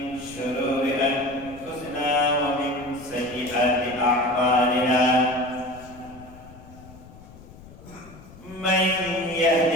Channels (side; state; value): left; noise; rumble, 20 dB below the sound